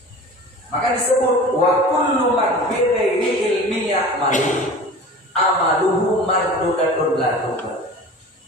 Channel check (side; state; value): both; normal; correlation 0.38